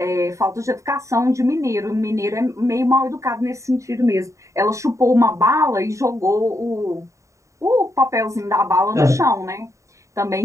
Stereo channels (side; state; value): left; late; 0.15 ms